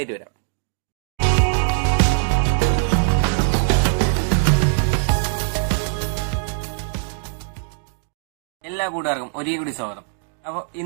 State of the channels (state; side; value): silent; left; 60 dB below the other